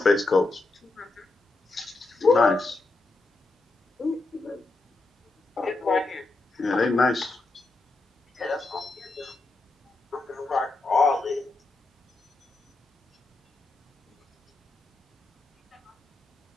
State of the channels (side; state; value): right; quieter; 3.2 dB